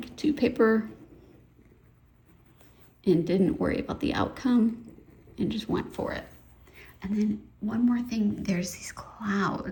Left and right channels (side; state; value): both; identical; correlation 1.00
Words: to paper and didn't worry about the outcome and just went for it. And then one more thing, there's these